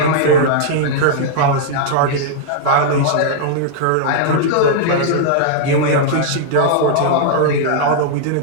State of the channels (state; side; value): different; both; correlation -0.01